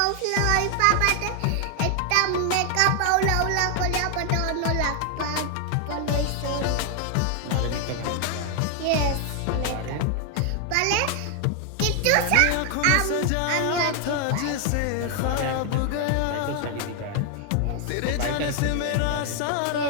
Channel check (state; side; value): different; both; correlation 0.00